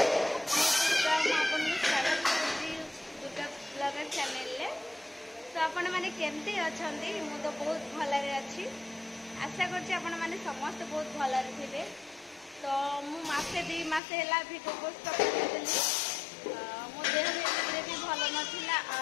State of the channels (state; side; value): drops out; right; at 14.0 s